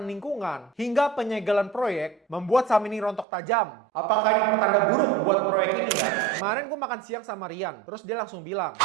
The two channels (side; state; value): left; drops out; at 3.2 s